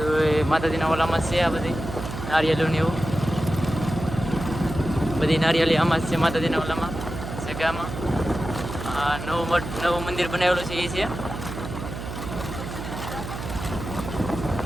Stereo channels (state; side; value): noise; right; hum, 8 dB below the sound